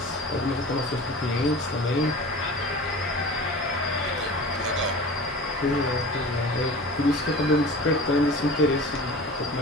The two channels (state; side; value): normal; both; correlation 0.37